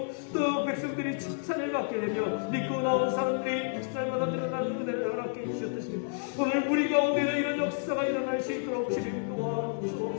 또 백성들이 칭찬을 받게 되며 믿고 나온 사람들이 날마다 늘어나는 은혜를 허락해 주셨듯이 오늘 우리 가운데도 이런 역사가 일어날 수 있도록 주님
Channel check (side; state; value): right; silent; digital silence